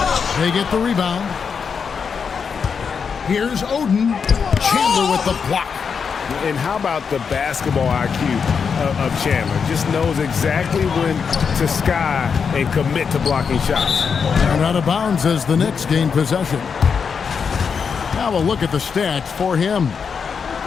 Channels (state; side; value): quieter; right; 6.2 dB